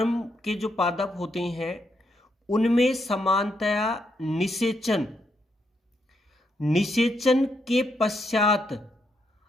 के जो पादप होते हैं उनमें समानतया निषेचन के पश्चात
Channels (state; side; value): normal; both; correlation 0.79